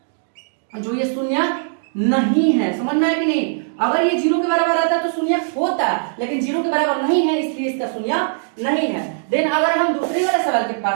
जो ये शून्यक नहीं है। समझ में आया कि नहीं? अगर ये 0 के बराबर आता तो शून्यक होता, लेकिन 0 के बराबर नहीं है इसलिए इसका शून्यक नहीं है। देन अगर हम दूसरे वाले सवाल के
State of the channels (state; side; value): silent; left; digital silence